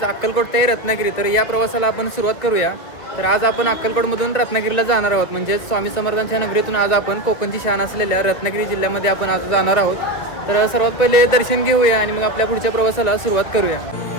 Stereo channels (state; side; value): late; right; 2.3 ms